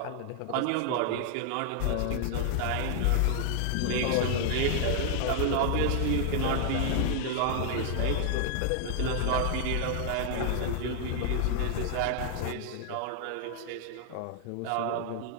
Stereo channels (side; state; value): both; different; correlation 0.00